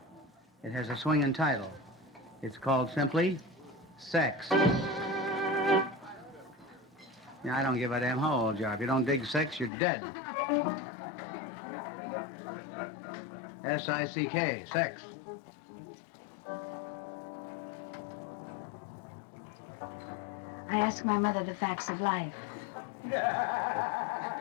It has a swinging title. It's called simply Sex. Yeah, I don't give a damn how old you are. If you don't dig sex, you're dead. S-I-C-K, sex. I ask my mother the facts of life.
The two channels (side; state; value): right; drops out; at 9.7 s